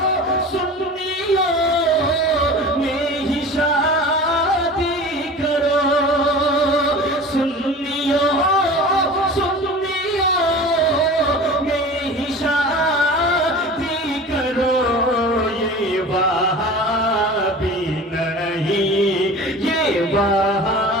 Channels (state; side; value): normal; both; correlation 0.37